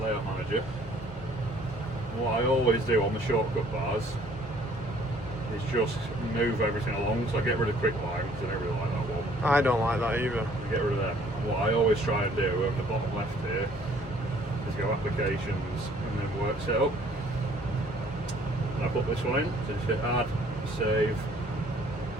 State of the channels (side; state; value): both; normal; correlation 0.58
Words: manager. What I always do on the shortcut bars is just move everything along, so I get rid of quick line, because I don't really like that one. I don't like that either. I get rid of them. And what I always try and do on the bottom left here is go applications and then work setup. And I put this one in, so just hit add, save.